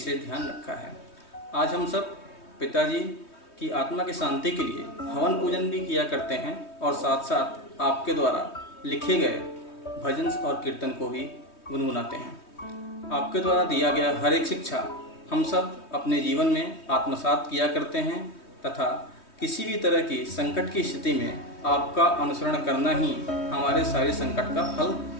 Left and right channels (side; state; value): right; late; 3.2 ms